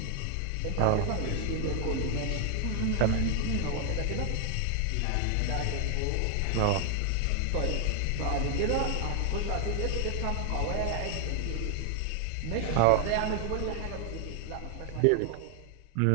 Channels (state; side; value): different; both; correlation 0.00